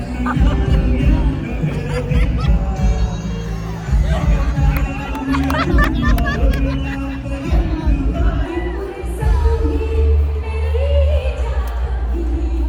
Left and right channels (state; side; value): identical; both; correlation 1.00